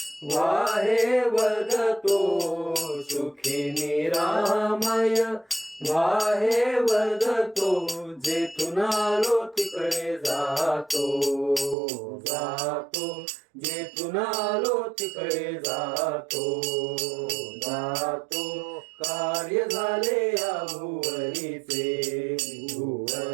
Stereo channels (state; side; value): drops out; left; at 11.8 s